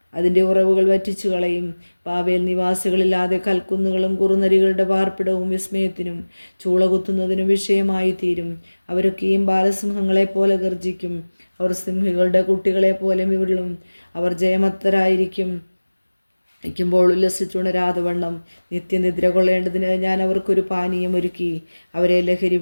അതിൻ്റെ ഉറവുകൾ വറ്റിച്ചു കളയും. ബാബേൽ നിവാസികളില്ലാതെ കൽക്കുന്നുകളും കുറുനരികളുടെ പാർപ്പിടവും വിസ്മയത്തിനും ചൂള കുത്തുന്നതിനും വിഷയമായി തീരും. അവരൊക്കെയും ബാലസിംഹങ്ങളെപ്പോലെ ഗർജിക്കും. അവർ സിംഹികളുടെ കുട്ടികളെ പോലെ വിരളും. അവർ ജയമത്തരായിരിക്കുമ്പോൾ ഉല്ലസിച്ചുണരാതെ വണ്ണം നിത്യനിദ്ര കൊള്ളേണ്ടതിന് ഞാൻ അവർക്കൊരു പാനീയം ഒരുക്കി അവരെ ലഹരി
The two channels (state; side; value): inverted; both; correlation -1.00